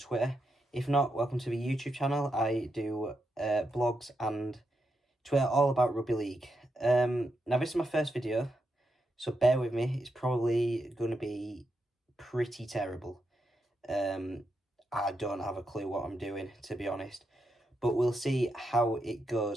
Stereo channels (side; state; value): both; normal; correlation 0.84